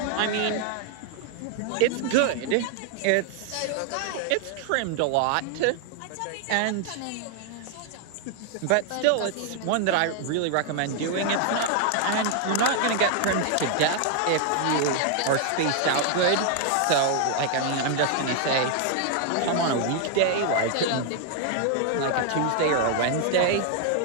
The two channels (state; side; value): different; both; correlation 0.00